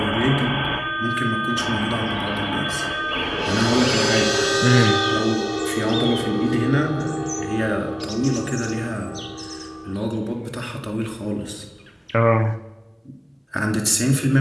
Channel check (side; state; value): both; identical; correlation 1.00